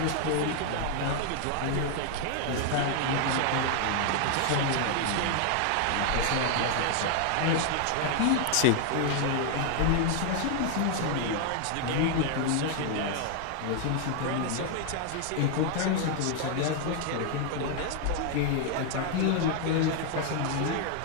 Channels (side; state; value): both; different; correlation 0.00